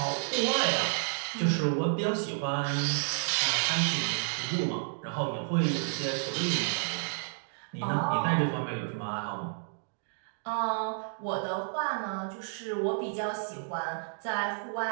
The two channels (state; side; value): silent; left; digital silence